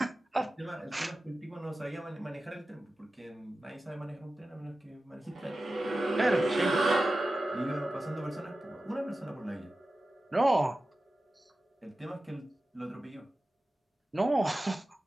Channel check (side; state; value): both; normal; correlation 0.94